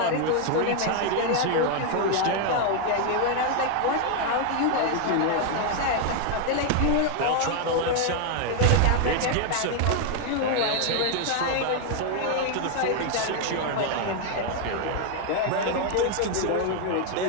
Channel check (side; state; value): both; different; correlation 0.00